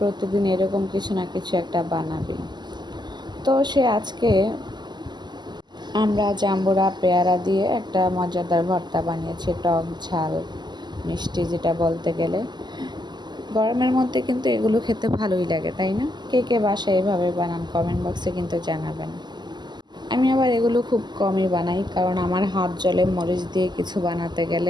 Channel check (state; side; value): late; left; 0.21 ms